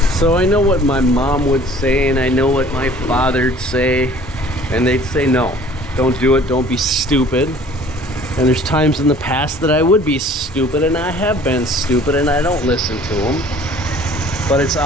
So I know what my mom would say, and I know what my father'd say, and they'd say no, don't do it, don't be stupid. And there's times in the past that I would be stupid, and I have been stupid, and I don't listen to them. But it's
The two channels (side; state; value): both; normal; correlation 0.51